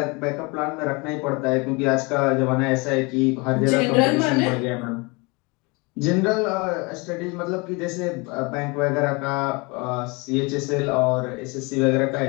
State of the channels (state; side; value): quieter; right; 27.8 dB